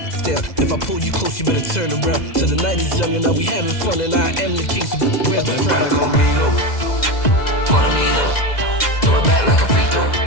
down. If I pull you close, you better turn around. Till the night is young and now we having fun and I am the king, so where's my crown? Follow me though, throw it back like a free throw.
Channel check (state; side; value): late; right; 2.0 ms